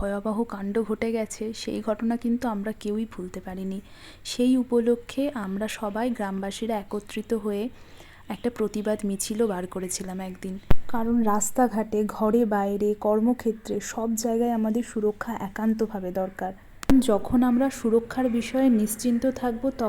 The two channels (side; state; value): both; identical; correlation 1.00